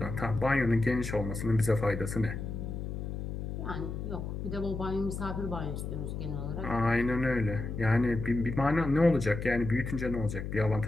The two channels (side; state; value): left; noise; hum, 5 dB below the sound